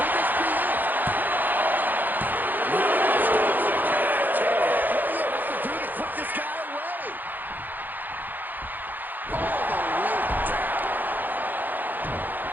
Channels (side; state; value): left; late; 0.087 ms